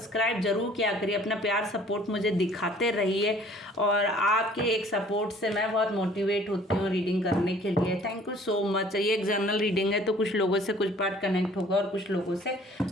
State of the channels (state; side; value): normal; both; correlation 0.54